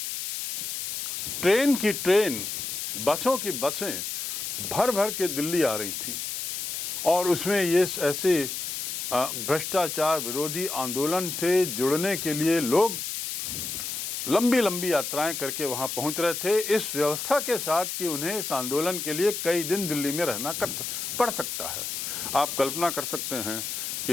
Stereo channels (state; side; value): noise; left; hiss, 4 dB below the sound